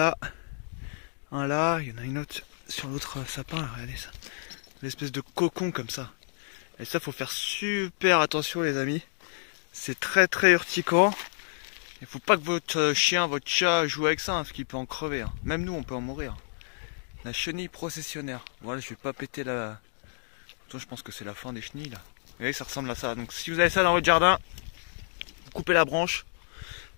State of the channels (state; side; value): silent; right; digital silence